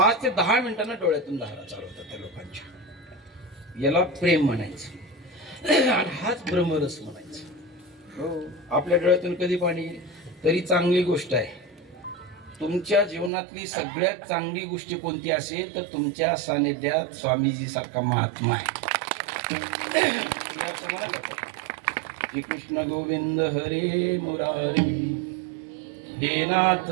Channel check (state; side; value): drops out; left; at 13.3 s